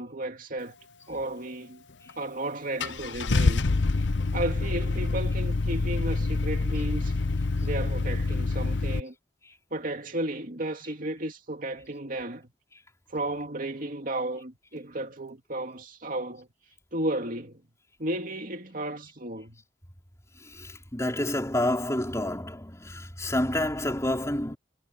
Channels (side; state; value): both; normal; correlation 0.66